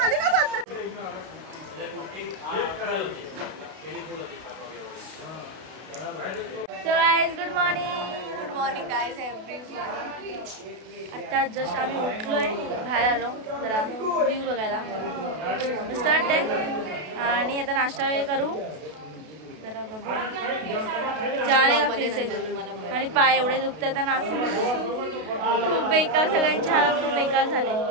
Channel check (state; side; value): late; left; 32 ms